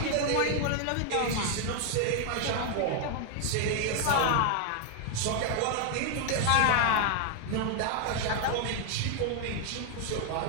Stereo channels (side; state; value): both; different; correlation 0.00